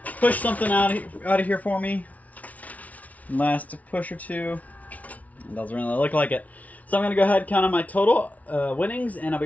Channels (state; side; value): late; right; 0.070 ms